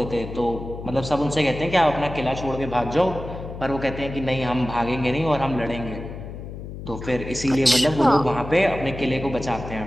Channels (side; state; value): left; noise; hum, 10 dB below the sound